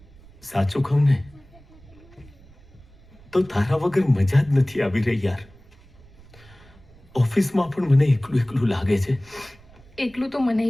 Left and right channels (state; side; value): noise; right; rumble, 25 dB below the sound